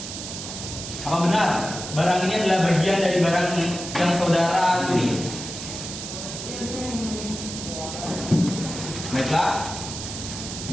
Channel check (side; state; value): right; noise; hiss, 8 dB below the sound